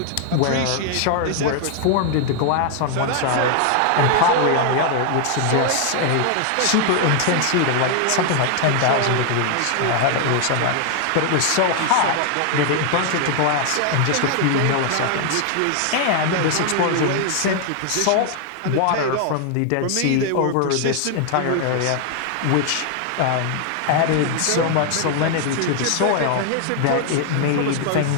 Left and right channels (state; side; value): different; both; correlation 0.00